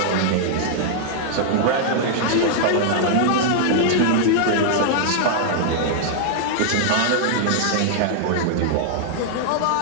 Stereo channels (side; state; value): both; different; correlation -0.01